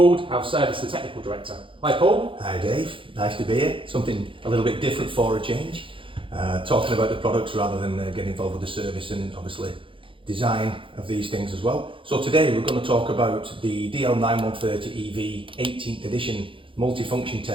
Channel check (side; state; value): left; late; 0.25 ms